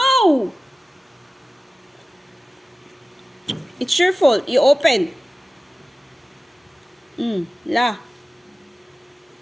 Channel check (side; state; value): both; normal; correlation 0.96